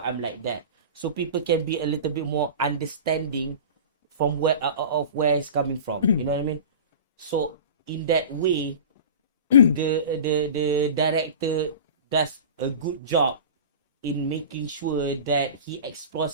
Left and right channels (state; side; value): inverted; both; correlation -0.34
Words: I'm like that. So people can be a little bit more understanding from where of where it's coming from. You know what I mean? So in that way, the director does a good job in making sure that he